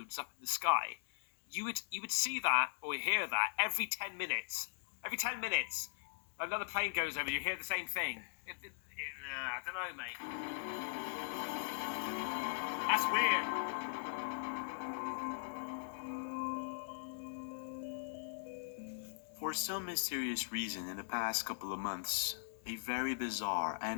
up in the sky. You would see that or hear that every 10 minutes. Every 10 minutes, another plane goes over. You hear the same thing. I don't know, mate. That's weird. For some mysterious reason, in the past couple of months, a very bizarre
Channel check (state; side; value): silent; right; digital silence